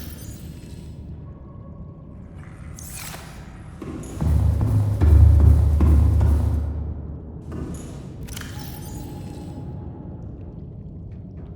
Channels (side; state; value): both; identical; correlation 1.00